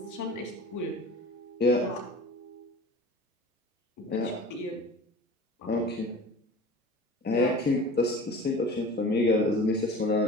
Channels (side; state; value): both; normal; correlation 0.40